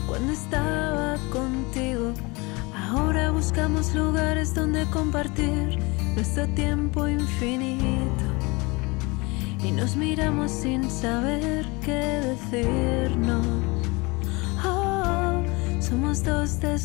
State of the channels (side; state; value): right; quieter; 26.0 dB